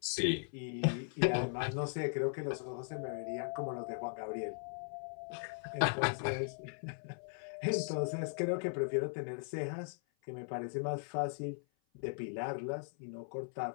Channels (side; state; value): right; silent; 52 dB below the other